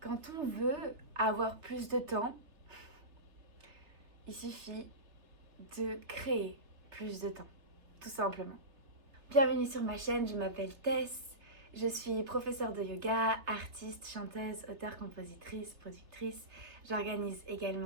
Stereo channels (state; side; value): late; left; 3.3 ms